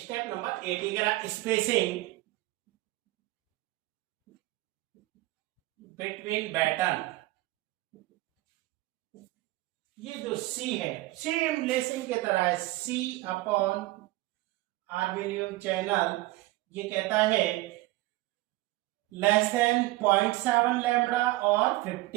नंबर 8 ये कह रहा स्पेसिंग बिटवीन बैटन। ये जो C है सेम लेसिंग के तरह है, C/आर्मेनियम चैनल। ये कहता है लेस देन 0.7 लैम्बडा और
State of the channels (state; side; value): quieter; left; 18.8 dB